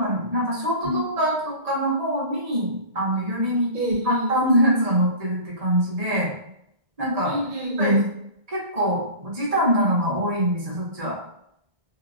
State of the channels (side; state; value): left; late; 1.6 ms